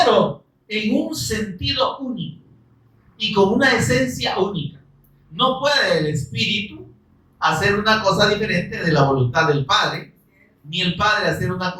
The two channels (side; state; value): both; identical; correlation 1.00